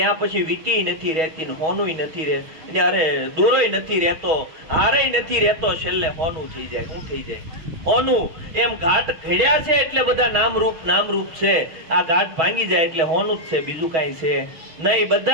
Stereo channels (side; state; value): left; late; 6.2 ms